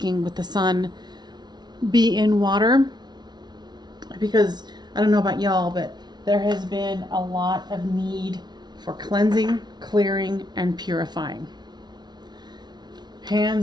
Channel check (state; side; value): late; left; 0.20 ms